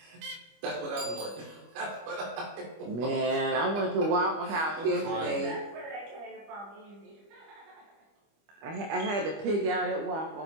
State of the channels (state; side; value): late; left; 25 ms